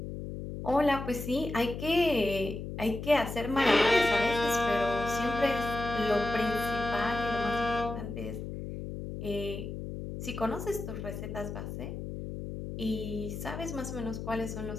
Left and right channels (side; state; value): left; noise; hum, 7 dB below the sound